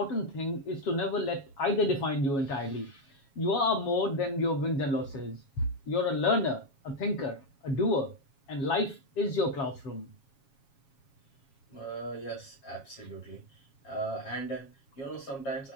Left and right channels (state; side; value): late; right; 7.3 ms